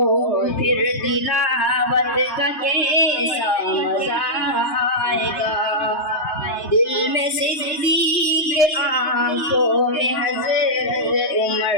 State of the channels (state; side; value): late; right; 3.3 ms